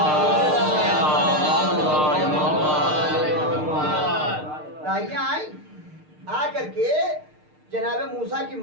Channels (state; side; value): late; left; 6.6 ms